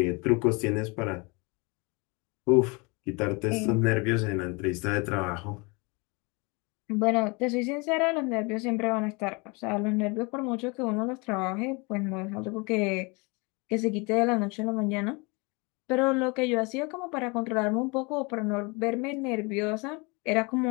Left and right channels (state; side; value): quieter; right; 28.7 dB